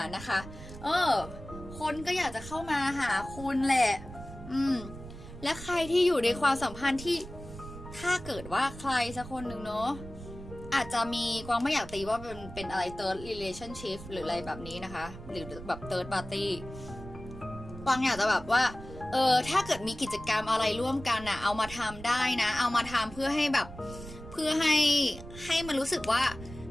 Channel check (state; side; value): noise; right; rumble, 14 dB below the sound